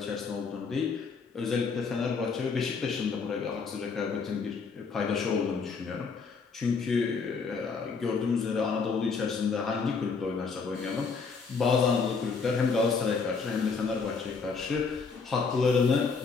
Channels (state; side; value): quieter; right; 5.0 dB